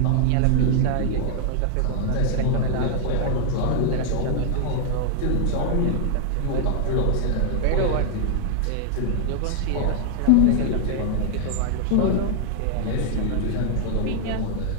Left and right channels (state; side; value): different; both; correlation 0.00